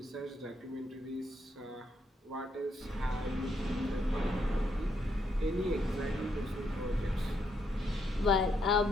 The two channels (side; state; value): both; normal; correlation 0.76